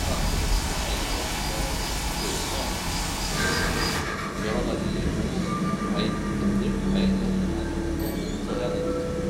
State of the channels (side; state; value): both; identical; correlation 1.00